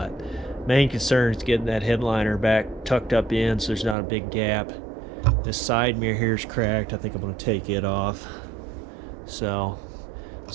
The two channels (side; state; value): left; drops out; at 4.0 s